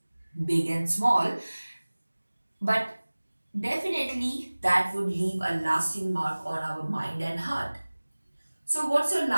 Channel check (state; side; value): inverted; both; correlation -1.00